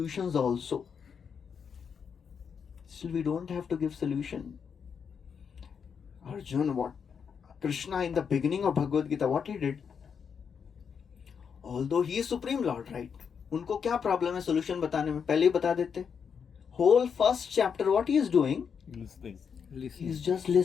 also. Still we don't have to give solution. Arjun, what Krishna in the beginning of Bhagavad Gita, what he did? Although he is Supreme Lord, right? उनको क्या problem है solution बताने में? पहले ही बता देते. Whole first chapter, what he is doing? Listening. He is just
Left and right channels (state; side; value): quieter; right; 6.7 dB